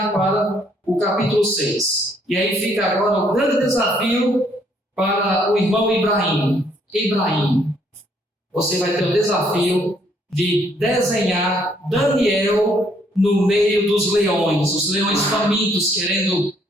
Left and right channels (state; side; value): normal; both; correlation 0.67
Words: para o capítulo 6. E aí fica agora o grande desafio para o irmão Ibrahim. Ibrahim, você vai ter o desafio de desenhar Daniel no meio dos leões, os leões famintos querendo